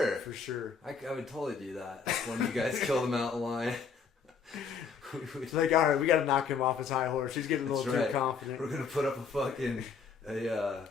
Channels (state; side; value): quieter; right; 5.8 dB